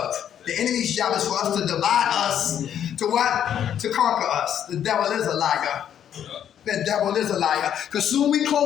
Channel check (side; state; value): right; quieter; 9.6 dB